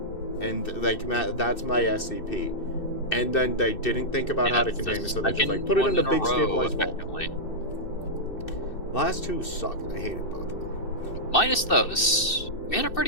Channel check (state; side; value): late; right; 2.6 ms